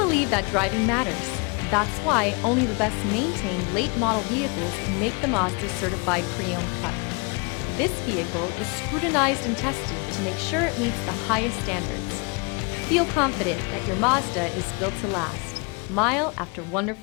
that driving matters. That's why only the best maintained late model vehicles can make the Mazda certified pre-owned cut. This vehicle is scrutinized and tested to make sure it meets the highest standards. Feel confident that your Mazda is built to last, mile after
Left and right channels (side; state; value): right; quieter; 31.2 dB